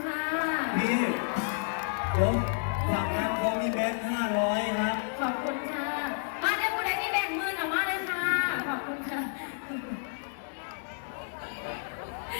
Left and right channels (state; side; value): silent; right; digital silence